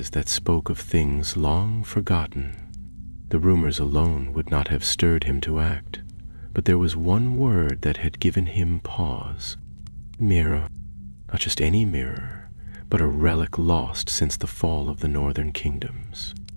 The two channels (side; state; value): both; inverted; correlation -1.00